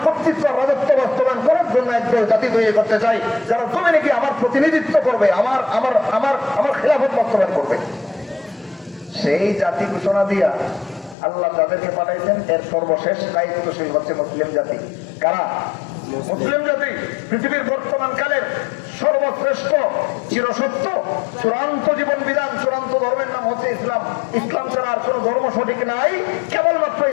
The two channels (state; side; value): drops out; right; at 11.2 s